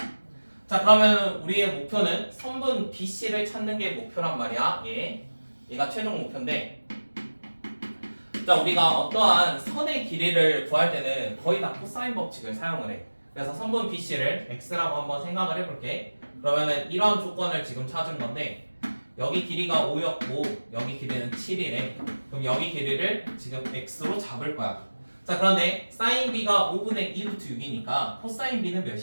자, 그러면 우리의 목표는 선분 BC를 찾는 게 목표란 말이야. 얘가 최종 목표인데 자 우리가 어떠한 선의 길이를 구할 때는 거의 다 코사인 법칙을 사용을 해. 그래서 선분 BC를 X라고 한번 생각을 해볼게. 그러면은 이런 조건을 지금 찾은 건데 여기 길이가 5였고 여기 길이는 7이래. 그럼 여기 길이를 지금 X로 잡을 거야. 자 그런데 사인 B가 5분의 2루트 6이니까 코사인 B는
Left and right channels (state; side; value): inverted; both; correlation -1.00